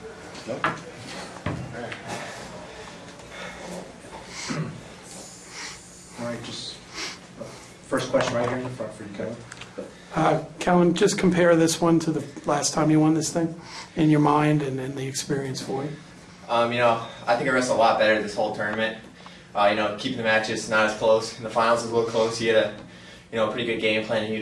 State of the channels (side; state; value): both; identical; correlation 1.00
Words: Nope. All right, just first question right here in the front for you, Kellen. Kellen, just compare this one to the last time you won this thing in your mind and the experience for you. I think I wrestled a lot better this whole tournament. Keeping the matches not as close. In the finals it was a little close. He had a pretty good game plan